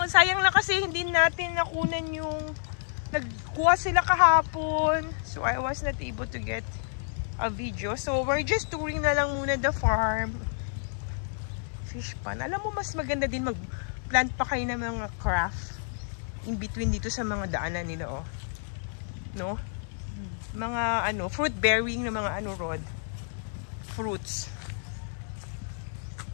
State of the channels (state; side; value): silent; right; digital silence